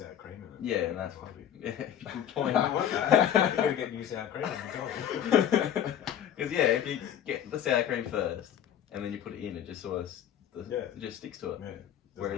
cream in it. Yeah, and that's Might be- yeah, I good point. don't want that. You gotta get new sour cream every time. Because yeah, if you get the sour cream first and then you put it in, it just sort of Yeah. it just sticks to it. Yeah. Where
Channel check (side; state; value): right; quieter; 10.0 dB